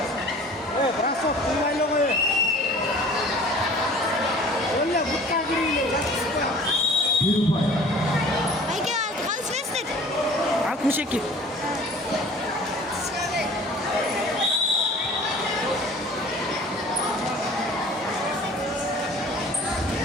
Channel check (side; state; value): both; normal; correlation 0.47